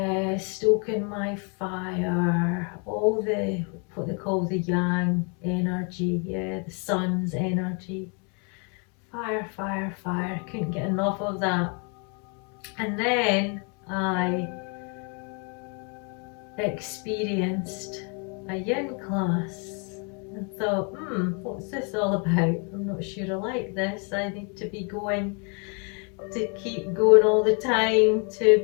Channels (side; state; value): right; quieter; 36.8 dB